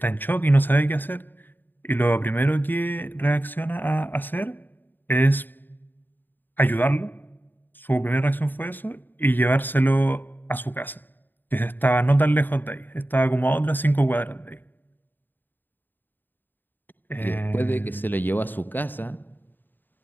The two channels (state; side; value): late; right; 0.092 ms